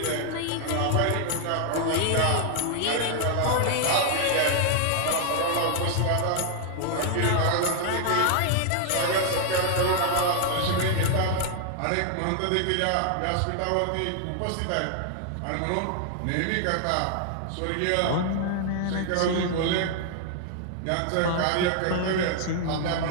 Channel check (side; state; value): both; different; correlation 0.00